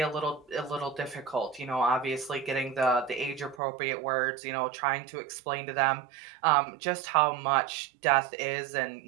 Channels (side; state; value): left; drops out; at 3.6 s